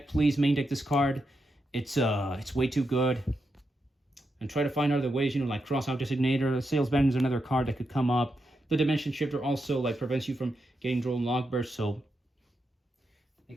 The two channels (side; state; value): both; normal; correlation 0.85